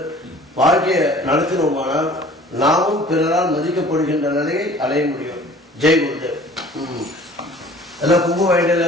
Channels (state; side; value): normal; both; correlation 0.49